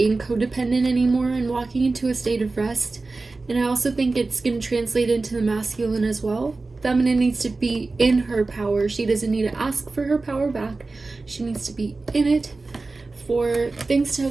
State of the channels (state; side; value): quieter; left; 3.6 dB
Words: codependent anymore and walking into a state of rest. And I also think it's going to translate into the masculine as well. Feminine needs to be in her power. She doesn't need to ask for her power back. She needs to be in it for things to